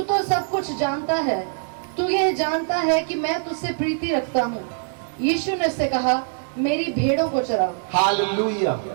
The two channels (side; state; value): left; silent; digital silence